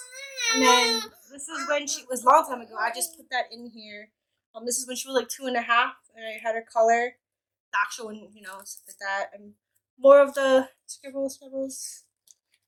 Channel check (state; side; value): identical; both; correlation 1.00